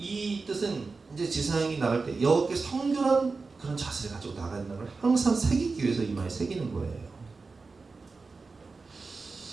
뜻은 이제 지상이 나갈 때 여호와께 성결한 그런 자세를 가지고 나가는 걸 항상 새기기 위해서 이마에 새기는 거예요.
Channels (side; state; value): left; quieter; 4.2 dB